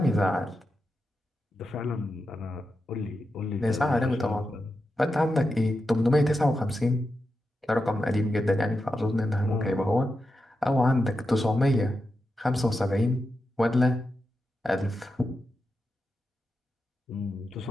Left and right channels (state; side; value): normal; both; correlation 0.88